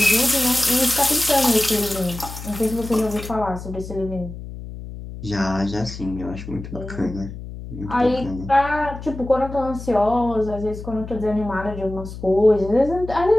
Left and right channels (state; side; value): noise; left; hum, 11 dB below the sound